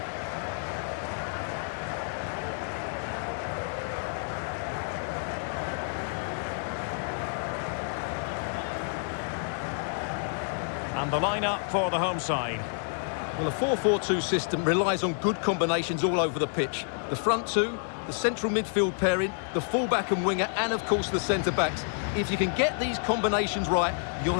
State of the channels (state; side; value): silent; right; 59 dB below the other